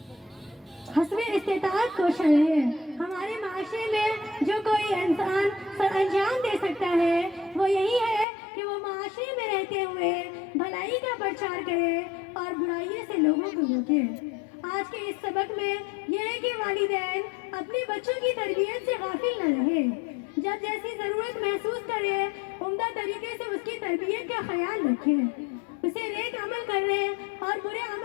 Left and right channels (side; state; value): right; drops out; at 8.2 s